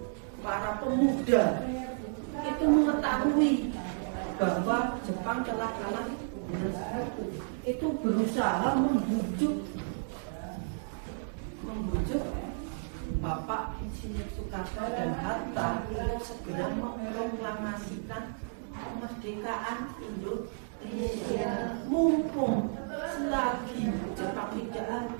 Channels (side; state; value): left; silent; digital silence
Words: Para pemuda itu mengetahui bahwa Jepang telah kalah, itu berusaha membujuk Bapak Insinyur Soekarno dan Hatta untuk segera memproklamasikan kemerdekaan Indonesia. Mumpung selagi Jepang tidak